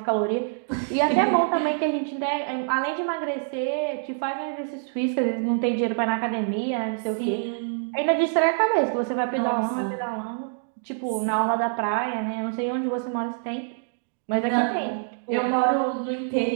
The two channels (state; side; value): silent; left; digital silence